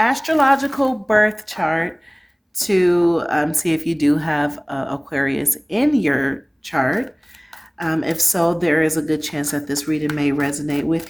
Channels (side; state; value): both; identical; correlation 1.00